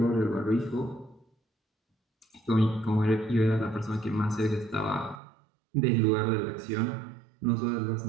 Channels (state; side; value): drops out; left; at 5.2 s